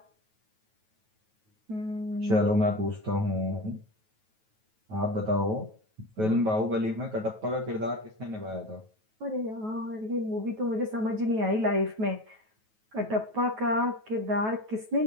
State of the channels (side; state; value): left; late; 9.2 ms